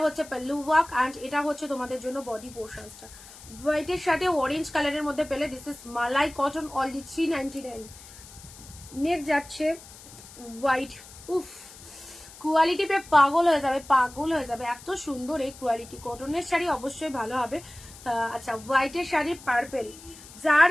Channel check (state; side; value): noise; left; hiss, 18 dB below the sound